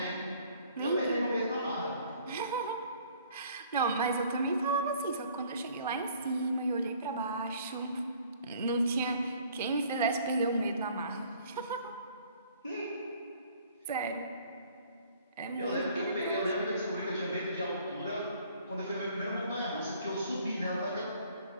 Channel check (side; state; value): both; inverted; correlation -0.57